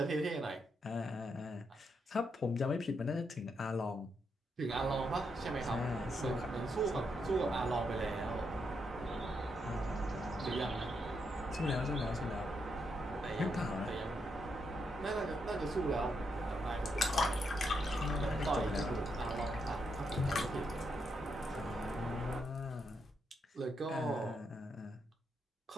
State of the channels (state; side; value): normal; both; correlation 0.80